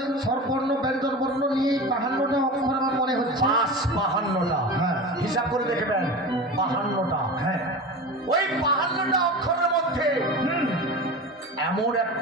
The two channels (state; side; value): normal; both; correlation 0.30